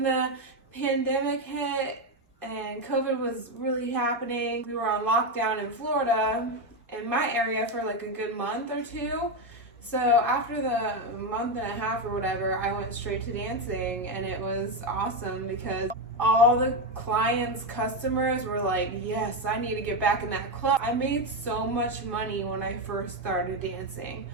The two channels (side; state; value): both; normal; correlation 0.09